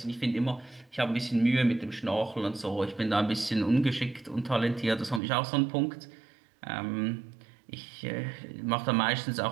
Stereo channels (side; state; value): left; drops out; at 5.2 s